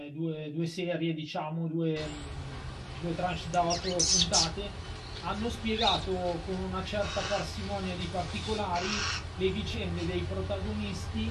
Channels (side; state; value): both; identical; correlation 1.00